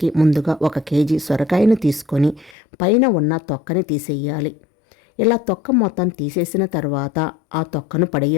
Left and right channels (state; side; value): drops out; right; at 2.6 s